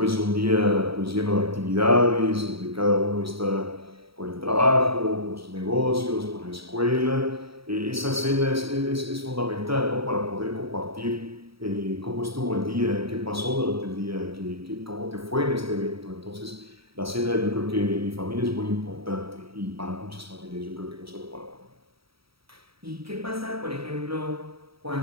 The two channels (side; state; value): left; late; 0.76 ms